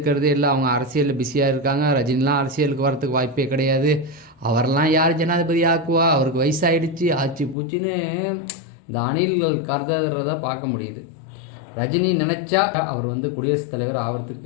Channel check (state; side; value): drops out; right; at 7.6 s